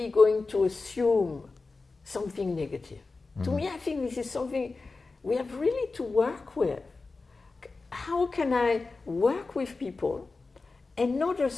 going to assume something negative. To me, I think this is something we have really to work with. How can I work with people and not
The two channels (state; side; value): quieter; right; 3.9 dB